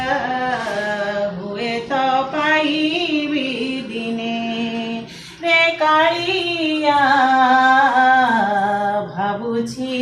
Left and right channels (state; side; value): identical; both; correlation 1.00